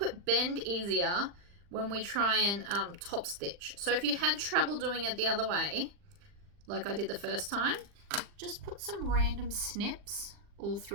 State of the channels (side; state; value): left; late; 40 ms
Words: it bend easier when we try and top stitch. So if you had trouble doing it the other way, like I did the first time, just put some random snips all